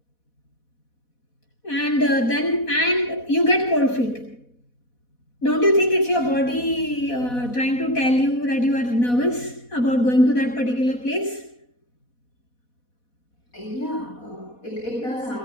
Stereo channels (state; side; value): late; right; 4.1 ms